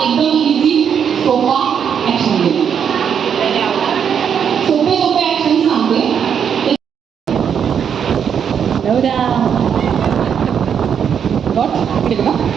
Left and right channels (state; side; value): quieter; left; 7.8 dB